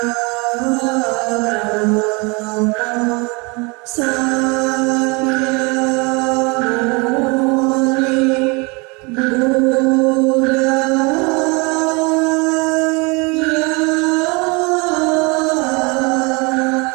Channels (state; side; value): quieter; left; 28.8 dB